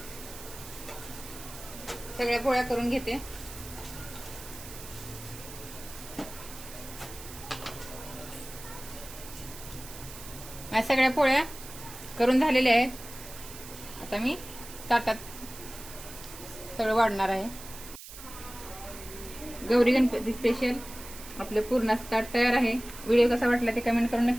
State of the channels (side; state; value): right; noise; hiss, 14 dB below the sound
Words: सगळ्या पोळ्या करून घेते. माझ्या सगळ्या पोळ्या करून झालेल्या आहेत. आता मी ताटात सगळं वाढणार आहे. गौरी गणपती स्पेशल आपलं पूर्ण ताट तयार आहे. व्हिडिओ कसा वाटला ते कमेंट करून